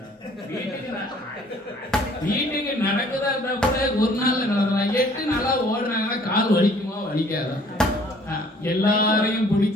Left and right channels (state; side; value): normal; both; correlation 0.57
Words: வீட்டுக்கு நடக்குதா இருந்தா கூட ஒரு நாள்ல நடக்கலாம். 8 நாளா ஓடுறாங்கன்னா கால் வலிக்குமா வலிக்காதா? எல்லாரையும்